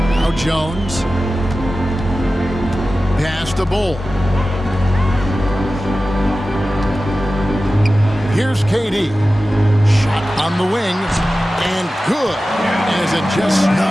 Now Jones. Pass to Bull. Here's KD. Shot on the wing. And good. As it just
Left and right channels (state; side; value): normal; both; correlation 0.95